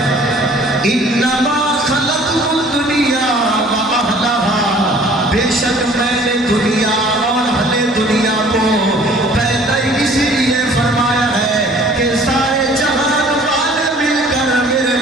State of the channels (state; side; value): normal; both; correlation 0.52